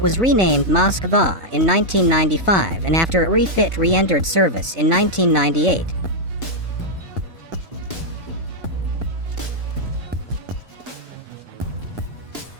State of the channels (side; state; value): left; late; 4.0 ms